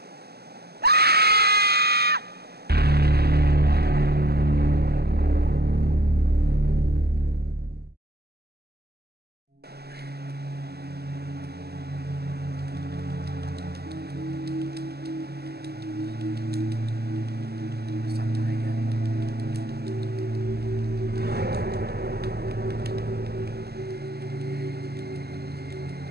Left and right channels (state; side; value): late; left; 0.46 ms